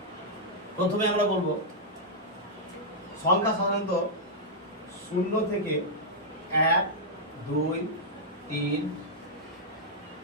প্রথমে আমরা বলবো সংখ্যা সাধারণত 0 থেকে 1, 2, 3,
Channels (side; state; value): both; normal; correlation -0.08